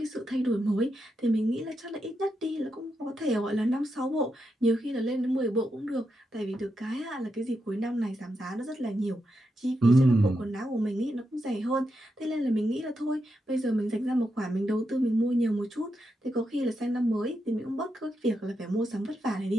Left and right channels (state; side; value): normal; both; correlation 0.85